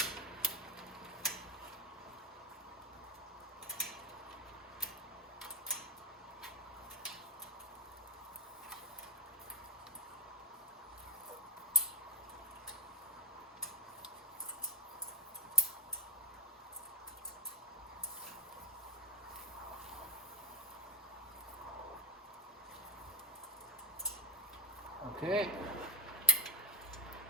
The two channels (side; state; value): both; normal; correlation 0.05